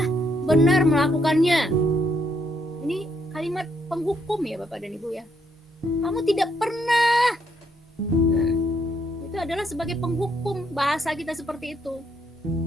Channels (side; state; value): both; normal; correlation 0.73